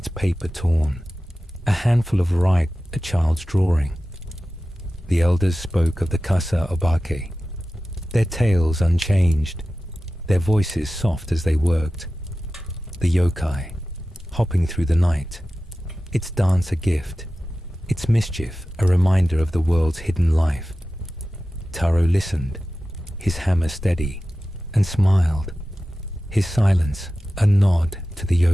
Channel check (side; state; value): both; normal; correlation 0.94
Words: paper torn, a handful of rice, a child's drawing. The elders spoke of the Kasa Obake, their tales unchanged, their voices soft as they worked. The yokai, hopping through the night, its dance a gift, its mischief a reminder of the world's hidden life. Taro listened, his hammer steady, and smiled, his silence a nod to the